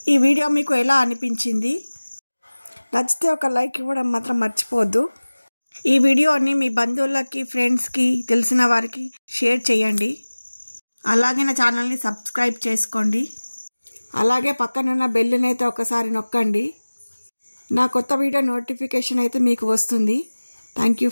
ఈ వీడియో మీకు ఎలా అనిపించింది? నచ్చితే ఒక లైక్ ఇవ్వడం మాత్రం మర్చిపోవద్దు. ఈ వీడియోని మీ బంధువులకి, ఫ్రెండ్స్కి, తెలిసిన వారికి షేర్ చేయండి. అలాగే నా ఛానల్ని సబ్స్క్రైబ్ చేసుకోండి. అలాగే పక్కనున్న బెల్లుని అయితే ఒకసారి నొక్కండి. నా కొత్త వీడియో నోటిఫికేషన్ అయితే మీకు వస్తుంది. Thank you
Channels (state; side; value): inverted; both; correlation -1.00